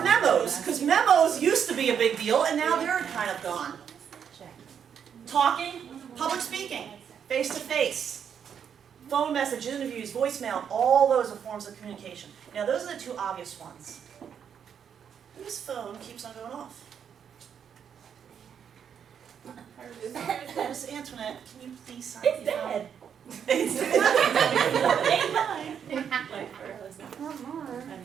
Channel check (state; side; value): quieter; left; 7.9 dB